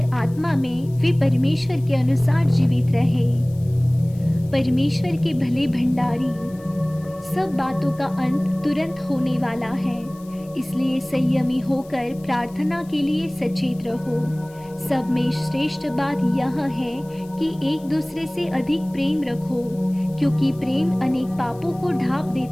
आत्मा में वे परमेश्वर के अनुसार जीवित रहे। परमेश्वर के भले भंडारी। सब बातों का अंत तुरंत होने वाला है, इसलिए संयमी होकर प्रार्थना के लिए सचेत रहो। सब में श्रेष्ठ बात यह है कि एक दूसरे से अधिक प्रेम रखो, क्योंकि प्रेम अनेक पापों को ढांप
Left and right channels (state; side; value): noise; left; hiss, 26 dB below the sound